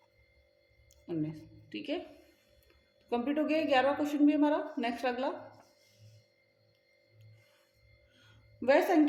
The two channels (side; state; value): both; identical; correlation 1.00